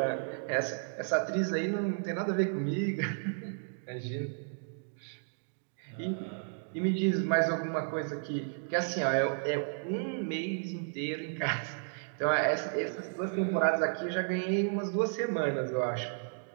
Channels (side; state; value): left; silent; digital silence